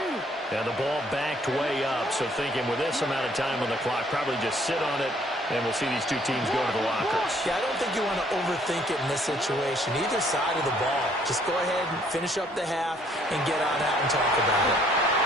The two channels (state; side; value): normal; both; correlation 0.63